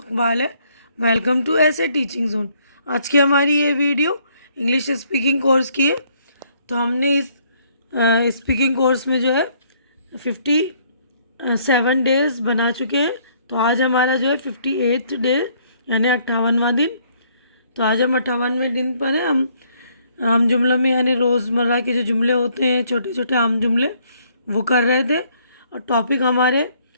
है। वेलकम टू ऐसे टीचिंग जोन। आज की हमारी ये वीडियो इंग्लिश स्पीकिंग कोर्स की है। तो हमने इस स्पीकिंग कोर्स में जो है 57 डेज़ बना चुके हैं। तो आज हमारा जो है 58th डे यानी 58वां दिन। तो आज हम 58वें दिन पर हैं। हम आम जुमलों में यानी रोज़मर्रा के जो जुमले होते हैं, छोटे छोटे आम जुमले, वो कर रहे थे। और टॉपिक हमारे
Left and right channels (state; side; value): inverted; both; correlation -0.66